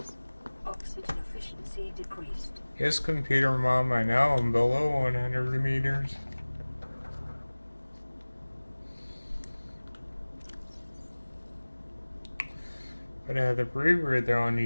Oxygen efficiency decreased. yes, computer mom, I know I'm below 100 meters. But I have the rebreather on,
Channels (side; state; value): both; inverted; correlation -1.00